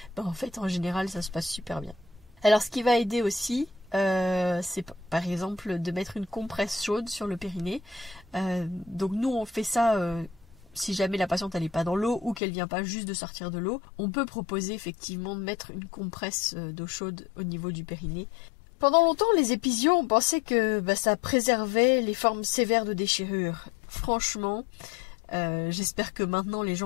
en fait en général ça se passe super bien. Alors ce qui va aider aussi, c'est par exemple de mettre une compresse chaude sur le périnée. Donc nous on fait ça si jamais la patiente elle n'est pas dans l'eau ou qu'elle vient pas juste de sortir de l'eau, on peut proposer effectivement de mettre une compresse d'eau chaude au niveau du périnée. Pendant longtemps, les épisios, on pensait que ça préservait les formes sévères de déchirure. Franchement, J'espère que maintenant les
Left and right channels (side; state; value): right; drops out; at 12.4 s